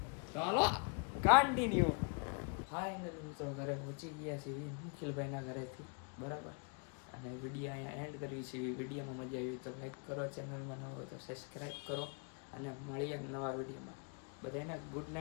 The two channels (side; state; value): right; quieter; 38.3 dB